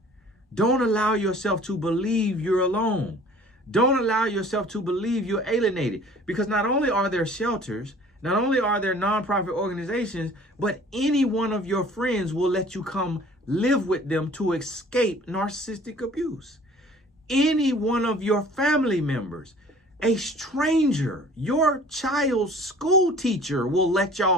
Don't allow yourself to believe you're alone. Don't allow yourself to believe you're alienated. Because not only are there shelters, not only are there nonprofit organizations, but any one of your friends will let you come live with them to escape narcissistic abuse. Any one of your family members, a stranger, your child's school teacher will let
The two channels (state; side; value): normal; both; correlation 0.49